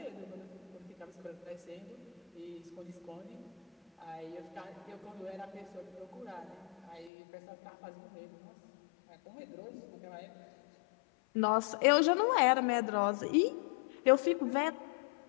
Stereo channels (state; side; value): drops out; right; at 7.1 s